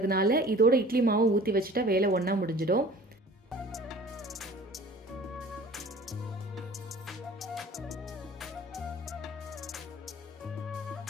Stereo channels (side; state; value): both; normal; correlation 0.46